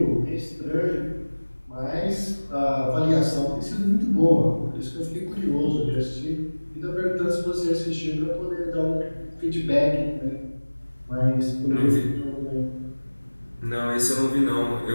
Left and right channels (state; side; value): inverted; both; correlation -1.00